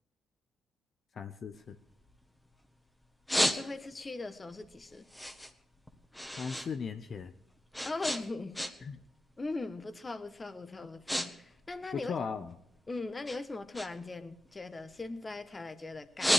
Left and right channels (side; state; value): both; normal; correlation 0.94